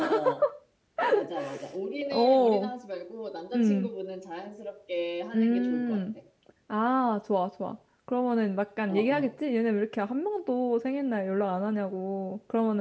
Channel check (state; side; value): identical; both; correlation 1.00